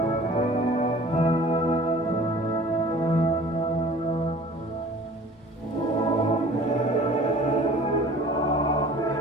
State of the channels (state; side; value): normal; both; correlation 0.47